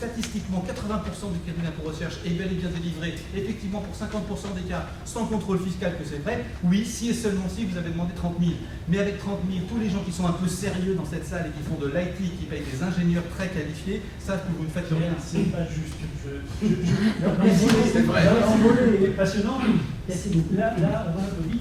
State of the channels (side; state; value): both; identical; correlation 1.00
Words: 80% du crédit d'impôt recherche est bel et bien délivré, effectivement pour 50% des cas, sans contrôle fiscal, que c'est vrai. Oui, si et seulement si vous avez demandé 30 000. Mais avec 30 000, tous les gens qui sont un peu sérieux dans cette salle et qui font de l'IT, qui payent des ingénieurs très qualifiés, savent que vous ne faites rien. C'est pas juste. C'est vrai. L'envolée est passionnant. Là, avant le Covid,